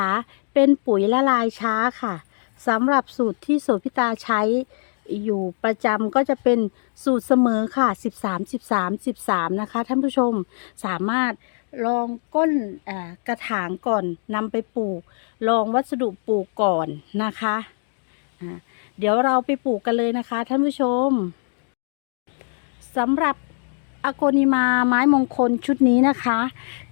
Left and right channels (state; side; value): silent; right; 64 dB below the other